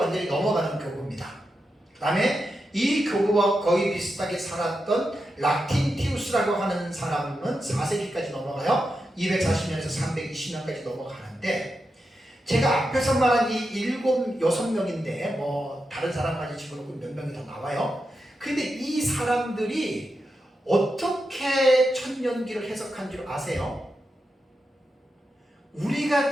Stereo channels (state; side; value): normal; both; correlation 0.88